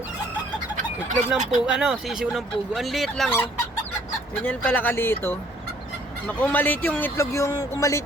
Itlog ng pugo, sisiw ng pugo. Ang liit lang oh. Ganyan pala kaliit oh. Kung maliit yung itlog, kung maliit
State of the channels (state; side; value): normal; both; correlation 0.60